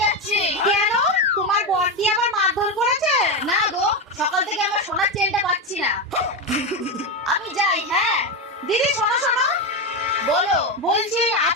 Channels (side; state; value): both; normal; correlation 0.12